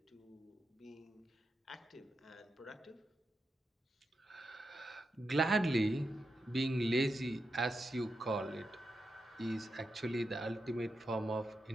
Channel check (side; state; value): both; normal; correlation 0.87